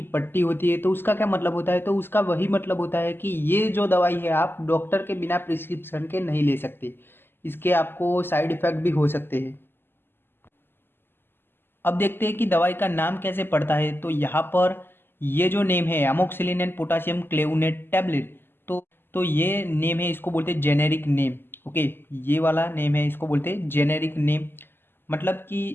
पट्टी होती है। तो उसका क्या मतलब होता है? तो उसका वही मतलब होता है कि ये जो दवाई है आप डॉक्टर के बिना प्रिस्क्रिप्शन के नहीं ले सकते, इसके आपको साइड इफेक्ट भी हो सकते हैं। अब देखते हैं कि दवाई का नाम कैसे पड़ता है। तो यहाँ पर ये जो नेम है एमोक्सिलिन एंड पोटेशियम क्लेवोनेट टैबलेट, तो ये नेम है, इसको बोलते हैं जेनेरिक नेम। ओके, ये वाला नेम है, इसको बोलते हैं जेनेरिक नेम। मतलब कि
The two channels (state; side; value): late; right; 0.10 ms